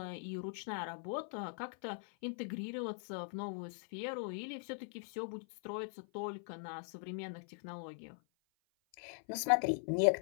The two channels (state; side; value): silent; right; 50 dB below the other